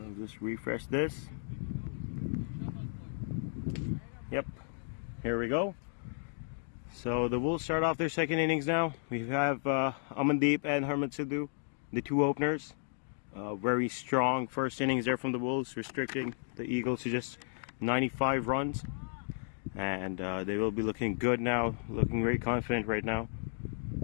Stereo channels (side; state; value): right; silent; digital silence